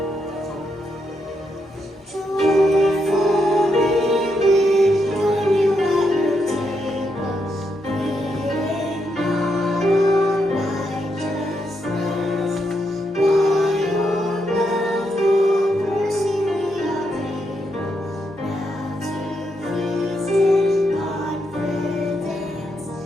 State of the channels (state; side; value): normal; both; correlation 0.80